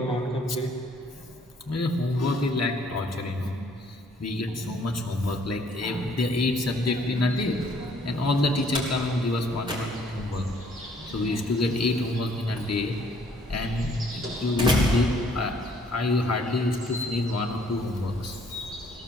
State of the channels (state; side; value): normal; both; correlation 0.62